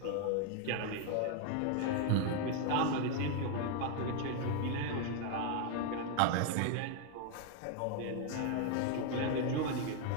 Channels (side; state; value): both; different; correlation 0.01